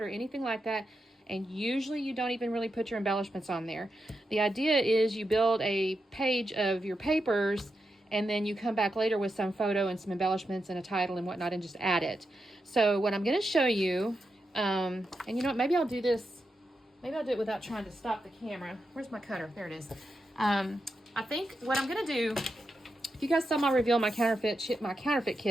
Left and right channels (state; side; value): normal; both; correlation 0.87